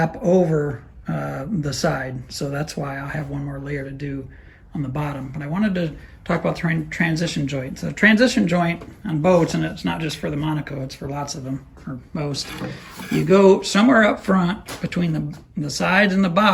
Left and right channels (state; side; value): identical; both; correlation 1.00